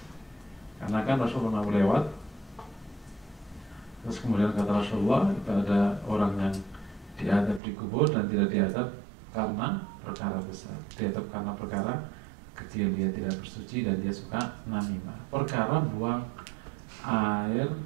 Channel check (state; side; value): drops out; left; at 7.6 s